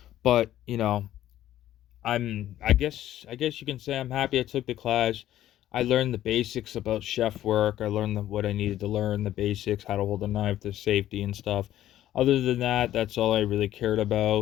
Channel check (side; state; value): right; quieter; 12.9 dB